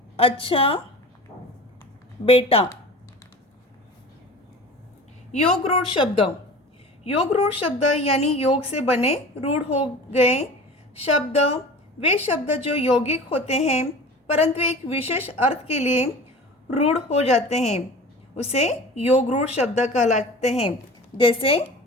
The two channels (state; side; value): normal; both; correlation 0.38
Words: अच्छा बेटा। योग रूढ़ शब्द। योग रूढ़ शब्द यानी योग से बने रूढ़ हो गए शब्द वे शब्द जो यौगिक होते हैं परंतु एक विशेष अर्थ के लिए रूढ़ हो जाते हैं, उसे योग रूढ़ शब्द कहलाते हैं। जैसे